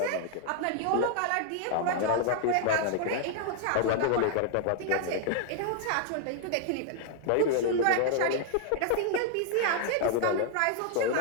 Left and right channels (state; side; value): different; both; correlation 0.00